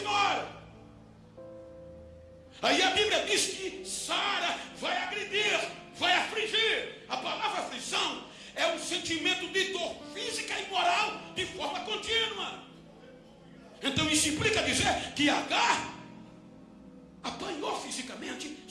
Aí a Bíblia diz que Sara vai agredir, vai afligir. A palavra aflição é um sentimento de dor física e moral de forma contínua. Então isso implica dizer que Agar apanhou fisicamente,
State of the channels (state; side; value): identical; both; correlation 1.00